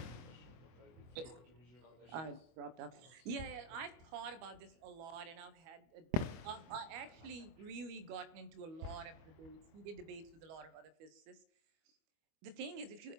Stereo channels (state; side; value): late; left; 24 ms